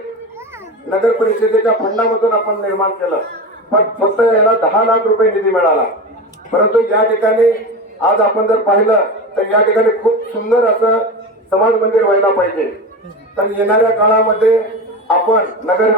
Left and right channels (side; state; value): both; normal; correlation 0.25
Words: नगर परिषदेच्या फंडामधून आपण निर्माण केलं. पण फक्त याला 10 लाख रुपये निधी मिळाला. परंतु या ठिकाणी आज आपण जर पाहिलं तर या ठिकाणी खूप सुंदर असं समाज मंदिर व्हायला पाहिजे. तर येणाऱ्या काळामध्ये आपण नगर